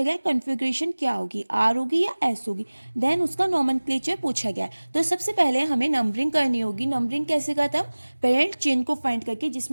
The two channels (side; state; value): both; inverted; correlation -1.00